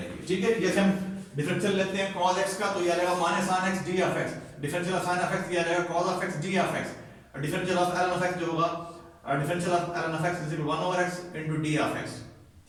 ठीक है, जैसे हम डिफरेंशियल लेते हैं cos x का, तो ये आ जाएगा minus sin x d of x, differential of sin of x ये आ जाएगा cos of x d of x, differential of ln of x जो होगा differential of ln of x is equal 1 over x into d of x।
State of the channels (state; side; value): identical; both; correlation 1.00